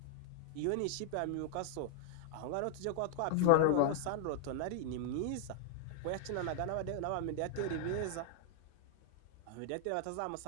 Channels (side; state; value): both; different; correlation -0.01